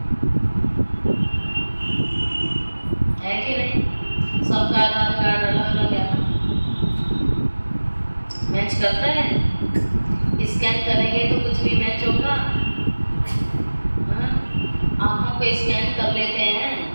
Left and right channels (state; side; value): inverted; both; correlation -1.00